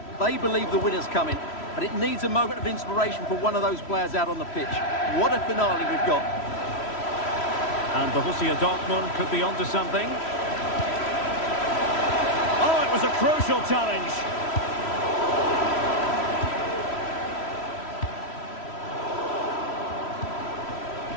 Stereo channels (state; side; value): late; right; 3.1 ms